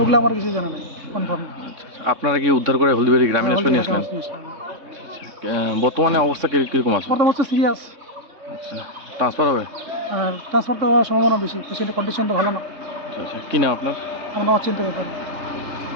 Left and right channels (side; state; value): left; late; 3.6 ms